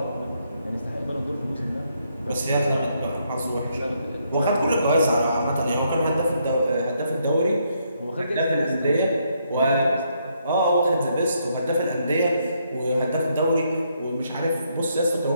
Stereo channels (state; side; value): inverted; both; correlation -0.75